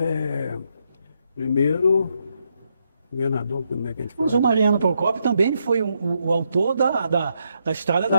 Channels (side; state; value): both; inverted; correlation -0.79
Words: governador, como é que a gente fala? Mas o Mariano Procópio também foi o autor da estrada